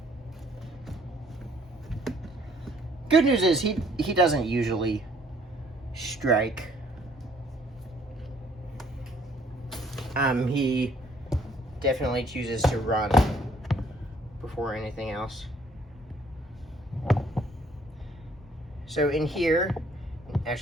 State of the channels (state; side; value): normal; both; correlation 0.62